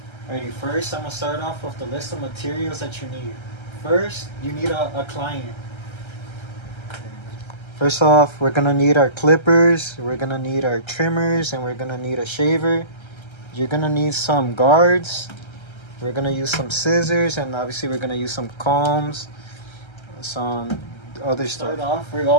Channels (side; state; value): right; late; 1.3 ms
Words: Alrighty, first I'm going to start off with the list of materials that you need. First, you need a client. First off, we're going to need our clippers, we're going to need our trimmers, and we're going to need a shaver. You're going to need some guards. We're going to use some scissors, and obviously we're going to use some combs, some other stuff. We